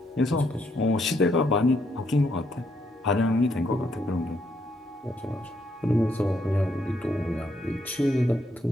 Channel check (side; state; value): both; normal; correlation 0.74